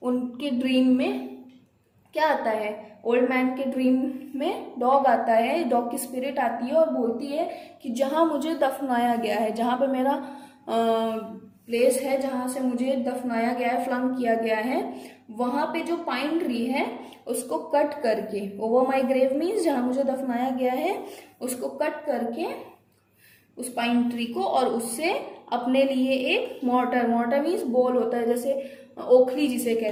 उनके ड्रीम में क्या आता है, ओल्ड मैन के ड्रीम में डॉग आता है, डॉग की स्पिरिट आती है और बोलती है कि जहाँ मुझे दफनाया गया है, जहाँ पे मेरा प्लेस है, जहाँ से मुझे दफनाया गया है, फ्लंग किया गया है, वहां पे जो पाइन ट्री है उसको कट करके, ओवर माई ग्रेव मीन्स जहाँ मुझे दफनाया गया है उसको कट करके उस पाइन ट्री को, और उससे अपने लिए एक मॉर्टर मीन्स बोल होता है, जैसे ओखली जिसे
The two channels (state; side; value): identical; both; correlation 1.00